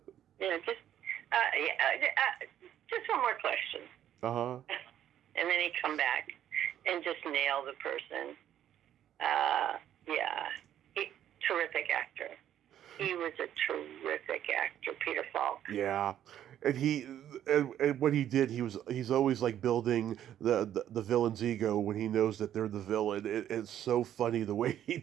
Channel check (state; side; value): quieter; left; 10.9 dB